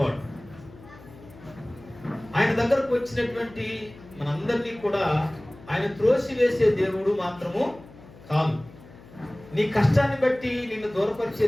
ఆయన దగ్గరకు వచ్చినటువంటి మనందరినీ కూడా ఆయన త్రోసివేసే దేవుడు మాత్రము కాదు. నీ కష్టాన్ని బట్టి నిన్ను దూరపరిచే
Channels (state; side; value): noise; left; hum, 21 dB below the sound